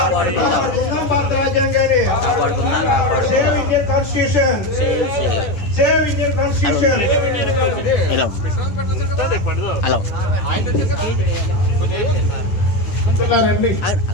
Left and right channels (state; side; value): late; right; 10 ms